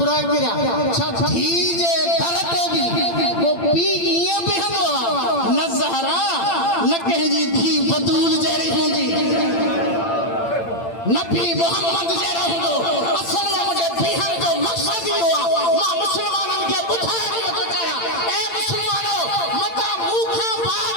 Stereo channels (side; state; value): right; late; 8.8 ms